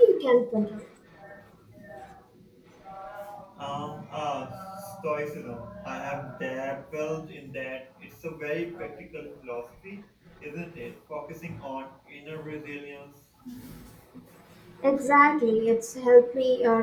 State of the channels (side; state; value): both; identical; correlation 1.00